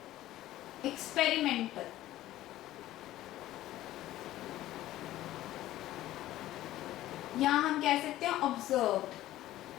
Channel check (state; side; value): quieter; right; 14.8 dB